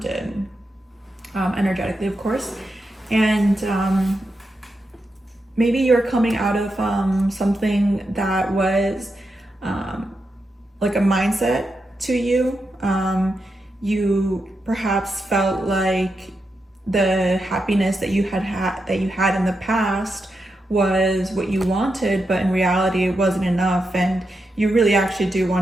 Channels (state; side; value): normal; both; correlation 0.86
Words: energetically, of course. And maybe you're coming out of something that was like a mindset to you. You perhaps felt like the happiness that you had in the past was what you wanted, but in reality it wasn't enough, and you really actually do